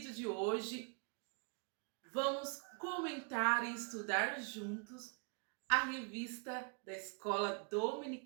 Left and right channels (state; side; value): quieter; left; 38.3 dB